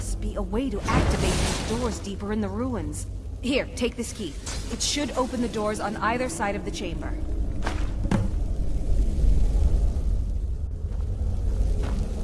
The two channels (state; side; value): identical; both; correlation 1.00